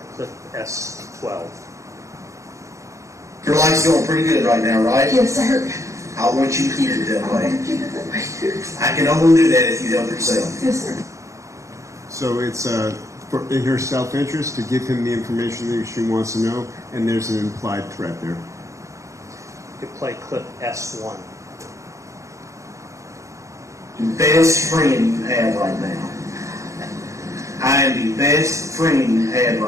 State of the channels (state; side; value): late; left; 0.15 ms